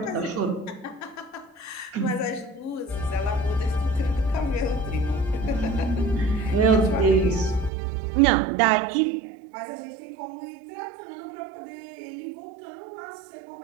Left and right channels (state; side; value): drops out; left; at 7.7 s